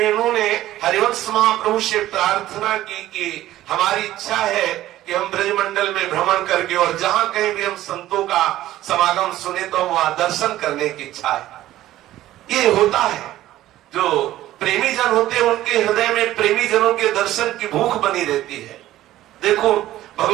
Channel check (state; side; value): quieter; left; 14.5 dB